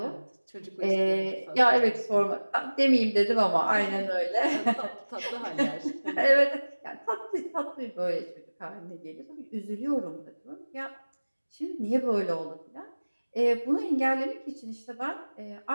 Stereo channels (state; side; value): inverted; both; correlation -1.00